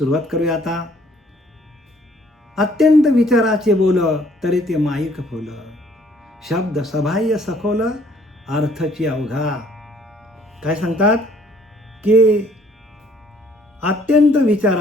करूया आता. अत्यंत विचाराचे बोल, तरी ते माईक फुल, शब्द सबाह्य सखोल, अर्थची अवघा. काय सांगतात? की अत्यंत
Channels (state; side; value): normal; both; correlation 0.61